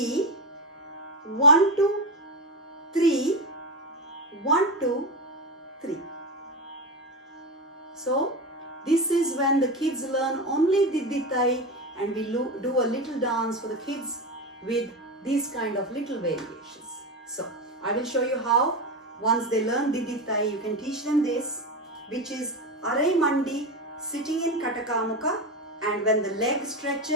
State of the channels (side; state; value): both; normal; correlation 0.17